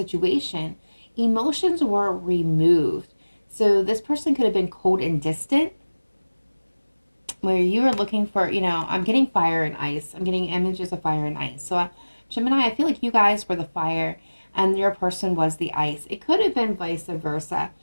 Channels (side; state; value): both; inverted; correlation -1.00